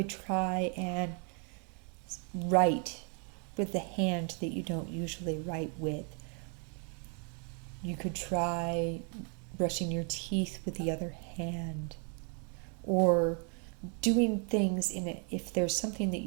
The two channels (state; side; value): quieter; left; 38.9 dB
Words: try and write with the hand that you don't usually write with. You could try brushing your teeth with the other hand, or doing things if there's something that